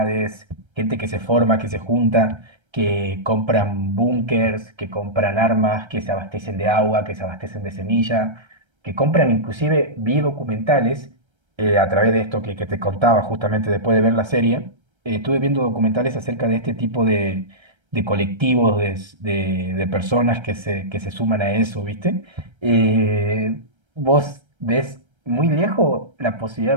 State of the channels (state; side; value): late; left; 1.3 ms